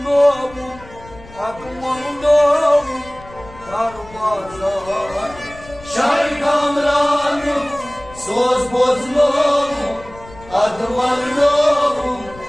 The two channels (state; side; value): noise; left; rumble, 20 dB below the sound